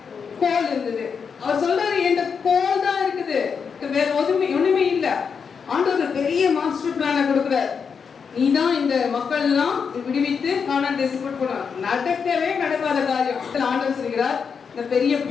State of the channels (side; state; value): right; quieter; 6.2 dB